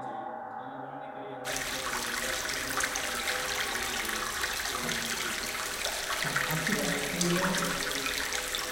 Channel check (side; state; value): both; identical; correlation 1.00